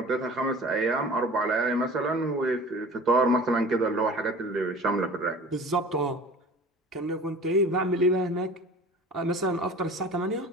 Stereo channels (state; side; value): normal; both; correlation 0.41